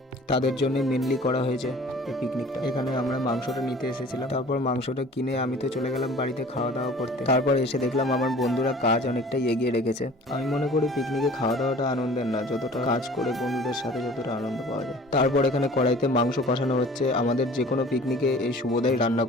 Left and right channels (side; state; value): both; normal; correlation 0.47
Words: তাদের জন্য মেনলি করা হয়েছে এই পিকনিকটা। এখানে আমরা মাংসটা নিতে এসেছিলাম, তারপর মাংসটা কিনে আমি তো চলে গেলাম বাড়িতে খাওয়া দাওয়া করতে। তারপর এসে দেখলাম আমার বন্ধুরা কাজ অনেকটাই এগিয়ে রেখেছে। আমি মনে করি পিকনিকে খাওয়া দাওয়াটা আনন্দের না, যতটা কাজ করে বন্ধুদের সাথে যতটা আনন্দ পাওয়া যায়। তারপর এখানে কড়াইতে মাংস কষানো হচ্ছে। আমাদের যে কোনো পিকনিকে এই শুভদাই রান্না